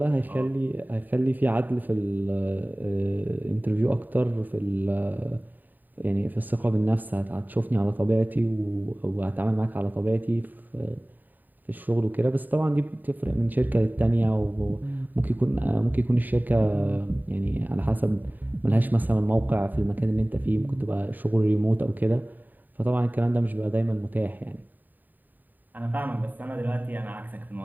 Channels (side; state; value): left; late; 0.088 ms